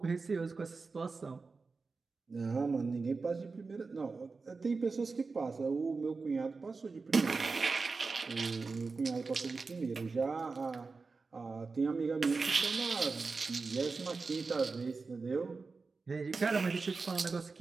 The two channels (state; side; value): quieter; left; 4.2 dB